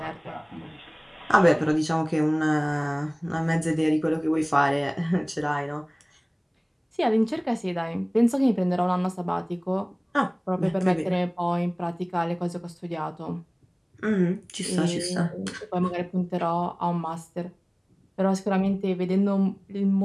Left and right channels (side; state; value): both; identical; correlation 1.00